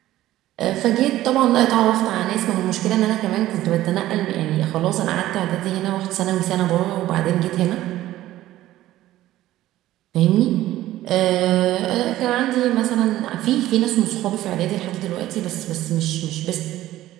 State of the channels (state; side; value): quieter; left; 14.8 dB